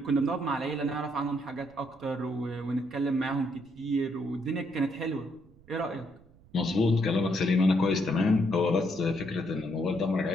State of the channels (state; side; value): noise; right; rumble, 27 dB below the sound